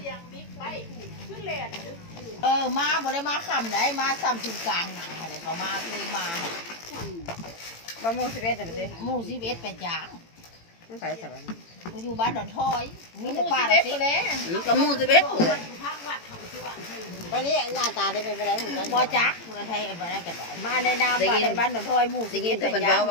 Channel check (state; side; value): late; right; 18 ms